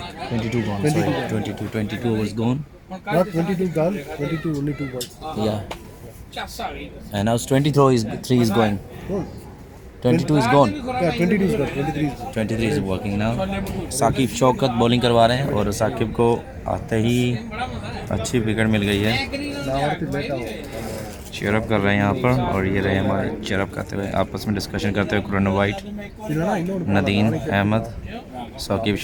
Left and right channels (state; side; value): identical; both; correlation 1.00